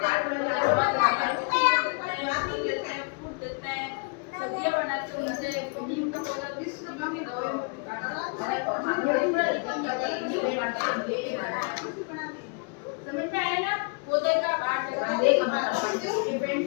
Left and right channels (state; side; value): quieter; right; 34.2 dB